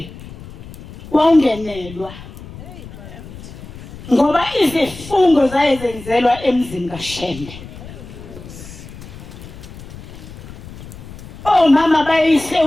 wawungenelwa ngoba izifungo zayezenzelwa emzini kaShembe mama bayise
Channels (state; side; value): noise; left; rumble, 15 dB below the sound